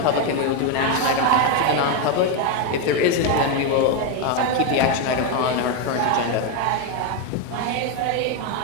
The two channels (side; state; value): both; different; correlation 0.02